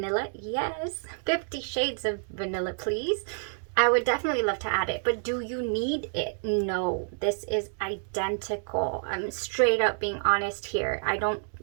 Yes. 50 shades of vanilla, please. I would definitely love to add it, but do you need it? No, this is identical. I'm straight up being honest here.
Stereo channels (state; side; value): silent; left; digital silence